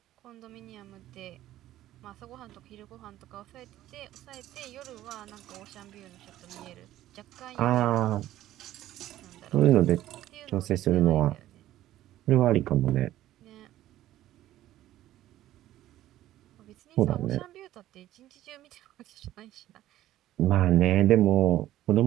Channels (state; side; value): quieter; left; 14.0 dB